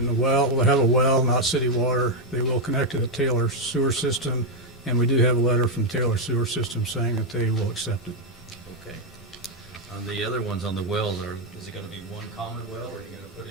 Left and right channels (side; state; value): both; normal; correlation 0.01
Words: the well, we'll have a well, not city water. They will connect to the Taylor sewer system, and we do have a letter from Taylor Sewer System saying that they will accept it. Okay. On the other ones on the wells, is it going to be one common well, or are you going to put